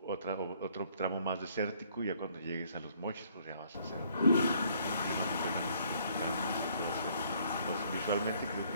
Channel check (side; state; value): both; inverted; correlation -0.64